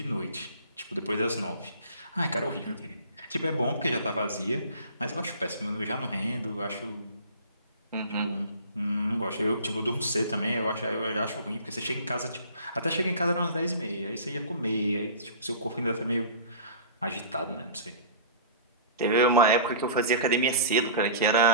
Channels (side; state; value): both; inverted; correlation -0.40